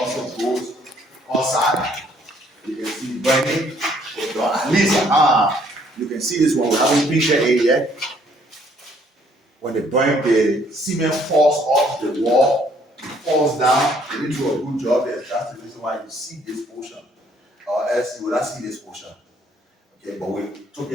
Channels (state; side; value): normal; both; correlation 0.64